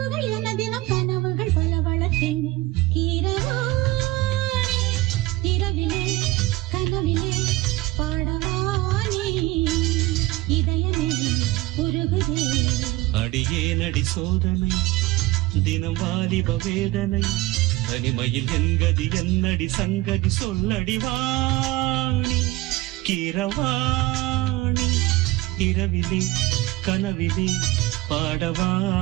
என தினம் கனவுகள் பல வளர்த்தேன் கீரவாணி இரவிலே கனவிலே பாடவாணி இதயமே உருகுதே அடியே நடி சோதனை தினம் வாலிப வேதனை தனிமையில் என்கதி என்னடி சங்கதி சொல்லடி வாணி கீரவாணி இரவிலே கனவிலே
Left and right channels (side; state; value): left; quieter; 19.0 dB